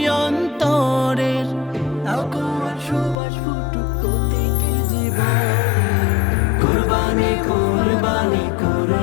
অন্তরের, আগুয়ার সুবাস ফুটুক প্রতিটি জীবন। কুরবানি কুরবানি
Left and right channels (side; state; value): right; drops out; at 3.2 s